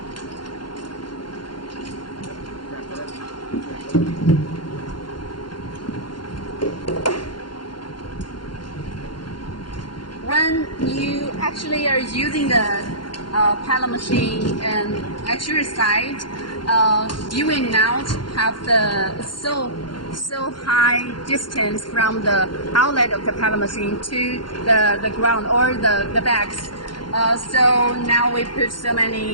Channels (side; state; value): right; late; 0.72 ms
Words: When you actually are using the pellet machine and at your side, you will not have the so high distance from the outlet of the pellet machine to the ground or the bags. So now we put so